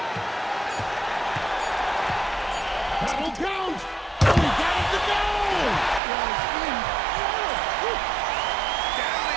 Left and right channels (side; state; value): left; drops out; at 6.0 s